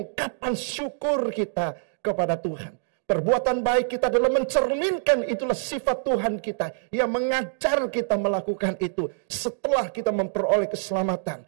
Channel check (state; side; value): silent; left; digital silence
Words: syukur kita kepada Tuhan. Perbuatan baik kita adalah mencerminkan itulah sifat Tuhan kita yang mengajar kita melakukan itu setelah kita memperoleh keselamatan,